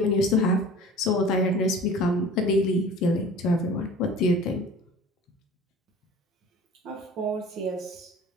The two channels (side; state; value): both; normal; correlation 0.43